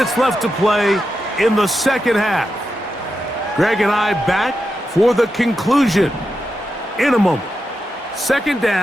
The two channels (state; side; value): normal; both; correlation 0.88